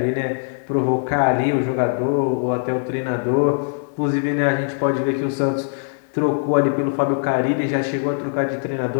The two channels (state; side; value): silent; right; digital silence